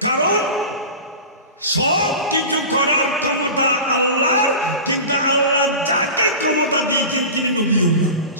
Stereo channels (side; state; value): both; inverted; correlation -0.31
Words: কারণ সব কিছু করার ক্ষমতা আল্লাহর, কিন্তু আল্লাহ যাকে ক্ষমতা দিয়েছেন তিনি নবিউল্লাহ।